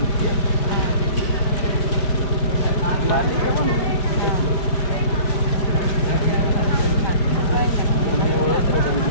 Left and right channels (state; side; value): late; right; 4.9 ms